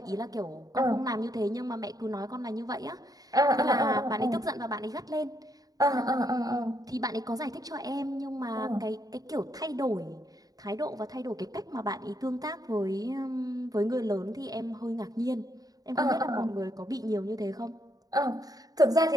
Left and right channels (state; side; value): late; left; 0.18 ms